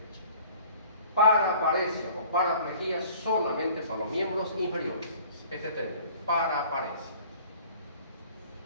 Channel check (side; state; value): both; inverted; correlation -0.50